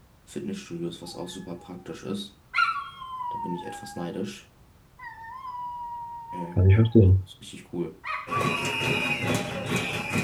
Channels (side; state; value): both; identical; correlation 1.00